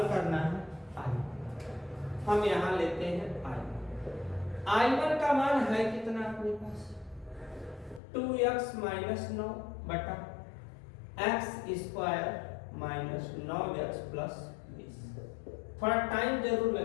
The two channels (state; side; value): drops out; right; at 8.0 s